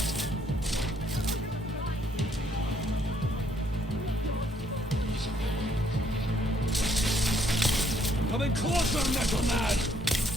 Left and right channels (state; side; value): normal; both; correlation 0.68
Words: Coming closer, Metal Man!